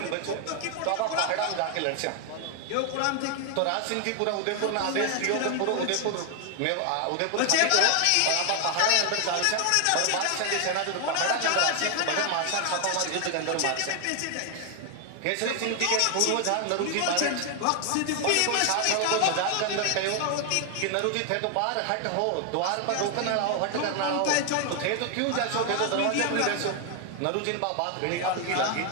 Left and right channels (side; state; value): both; different; correlation 0.00